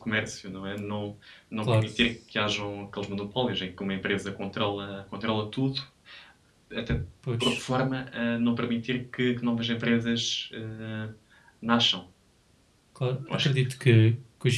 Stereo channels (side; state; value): both; identical; correlation 1.00